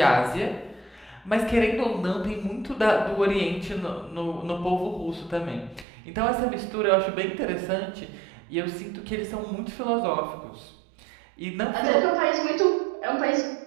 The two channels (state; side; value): drops out; left; at 5.9 s